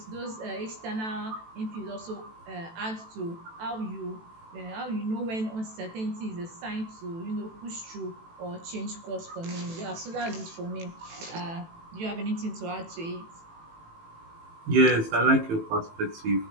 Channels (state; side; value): late; left; 18 ms